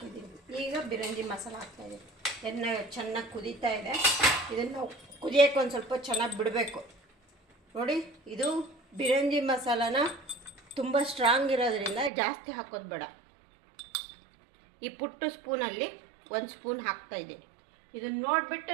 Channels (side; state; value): left; drops out; at 12.1 s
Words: ಈಗ ಬಿರಂಜಿ ಮಸಾಲ ಹಾಕ್ತಾಯಿದ್ದೀನಿ. ಎಣ್ಣೆ ಚೆನ್ನಾಗಿ ಕುದೀತಾ ಇದೆ. ಇದನ್ನು ಕುದಿಯೋಕ್ಕೆ ಒಂದು ಸ್ವಲ್ಪ ಚೆನ್ನಾಗಿ ಬಿಡಬೇಕು. ನೋಡಿ, ಇದು ಬಿರಂಜಿ ಮಸಾಲಾನ ತುಂಬ ಸ್ಟ್ರಾಂಗ್ ಇರೋದ್ರಿಂದ ಜಾಸ್ತಿ ಹಾಕೋದು ಬೇಡ. ಈ ಪುಟ್ಟು ಸ್ಪೂನಲ್ಲಿ 1 ಸ್ಪೂನ್ ಹಾಕ್ತಾಯಿದ್ದೀನಿ. ಇದನ್ನು ನೋಡಿಬಿಟ್ಟು